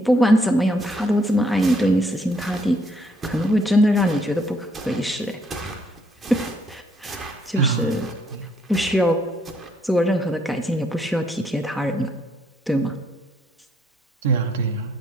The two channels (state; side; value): normal; both; correlation 0.70